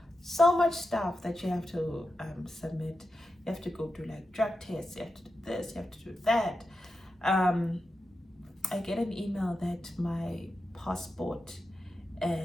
so much stuff that you have to submit. You have to go do like drug tests, you have to do this, you have to do that. I get an email that my passport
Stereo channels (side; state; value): both; normal; correlation 0.90